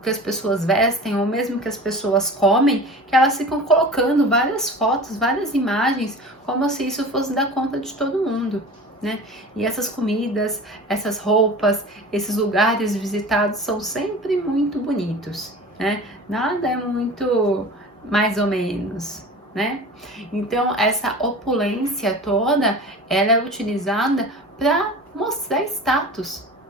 que as pessoas vestem ou mesmo que as pessoas comem, que elas ficam colocando várias fotos, várias imagens, como se isso fosse dar conta de todo mundo, né? E essas comidas, essas roupas, esses lugares visitados são sempre muito bonitos, né? Nada é muito mais ou menos, né? Então, essa opulência toda, ela é utilizada para mostrar status,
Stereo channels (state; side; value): normal; both; correlation 0.37